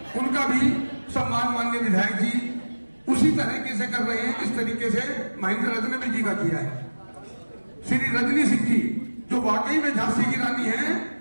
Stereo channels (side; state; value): both; inverted; correlation -1.00